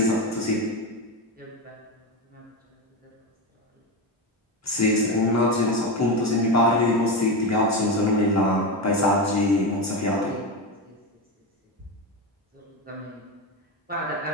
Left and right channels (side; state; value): both; normal; correlation 0.16